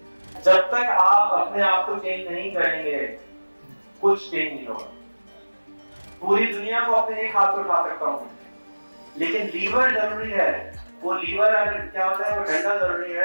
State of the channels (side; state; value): both; inverted; correlation -1.00